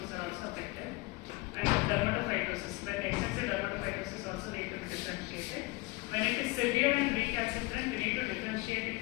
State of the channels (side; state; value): right; quieter; 23.4 dB